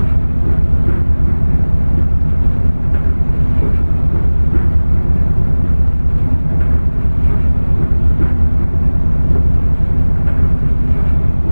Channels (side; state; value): both; inverted; correlation -1.00